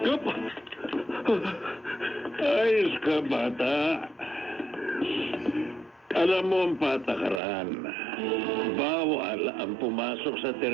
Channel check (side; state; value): left; drops out; at 7.4 s